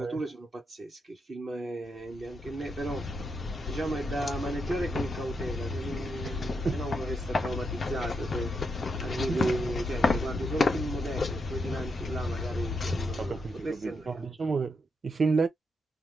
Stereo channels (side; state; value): both; normal; correlation 0.82